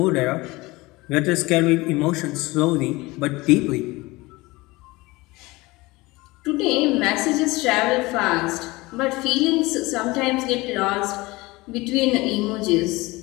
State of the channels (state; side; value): quieter; right; 21.8 dB